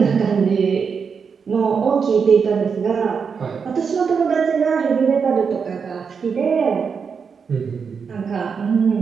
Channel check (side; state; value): left; quieter; 6.0 dB